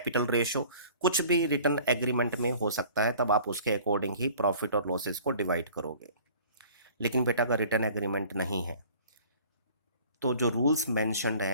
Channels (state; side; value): inverted; both; correlation -0.49